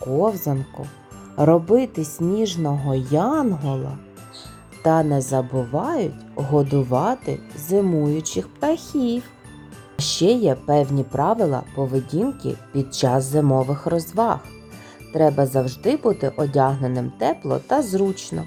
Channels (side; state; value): both; identical; correlation 1.00